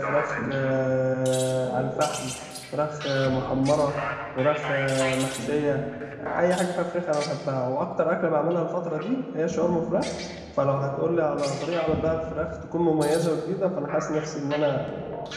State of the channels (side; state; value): both; identical; correlation 1.00